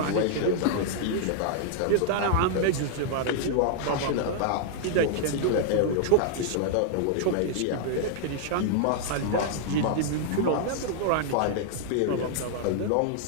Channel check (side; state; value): both; different; correlation 0.00